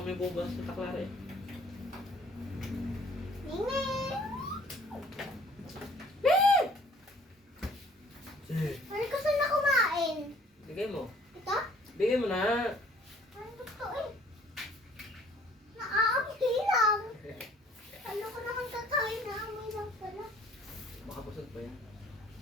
bubas sa Taklare. Ano gusto na kumain? Bigay mo. Ito? Bigay mo na. Ano gusto eh? Naaamoy lang. Ano ko naman kakain na amoy lang pala. Baka busog pa yan.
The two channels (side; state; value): both; normal; correlation 0.56